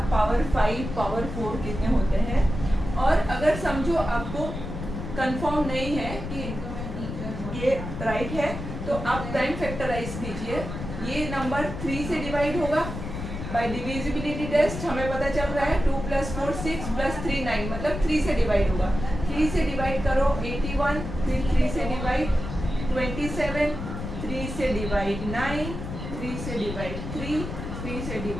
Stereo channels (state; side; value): noise; left; rumble, 7 dB below the sound